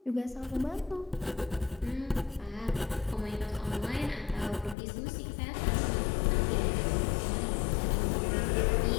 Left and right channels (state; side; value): drops out; right; at 4.8 s